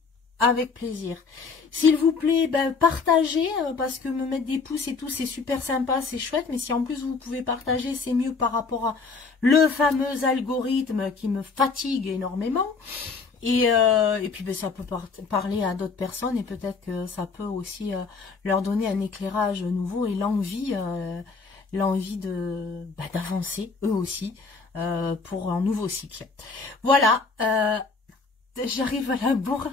avec plaisir. S'il vous plaît, ben partagez, parce que me mettre des pouces et tout, c'est super sympa, c'est chouette, mais si en plus vous pouvez partager, c'est mieux par rapport à le fameux algorithme qui me fatigue énormément. Et puis ben, ça peut parler à d'autres personnes et peut-être que ça peut aussi leur donner un éclairage nouveau et l'envie de d'avancer eux aussi pour un nouveau cycle. Voilà, j'arrive à la bourre.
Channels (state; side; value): quieter; right; 4.5 dB